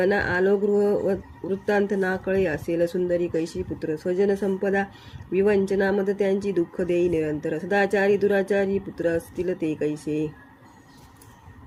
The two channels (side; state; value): both; identical; correlation 1.00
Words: आलो गृह वृत्तांत ना कळे असेल सुंदरी कैशी पुत्र स्वजन संपदा विवंचना मद त्यांची दुःख देई निरंतर सदाचारी दुराचारी पुत्र असतील ते कैसे